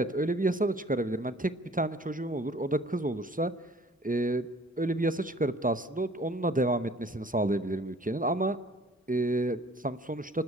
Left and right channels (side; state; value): both; normal; correlation 0.53